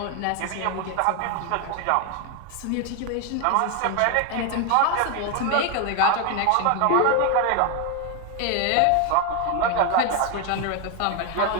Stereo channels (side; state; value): both; different; correlation 0.01